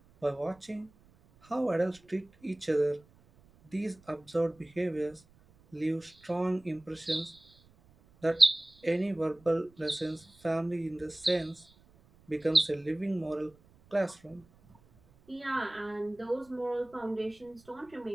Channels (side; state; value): right; noise; rumble, 28 dB below the sound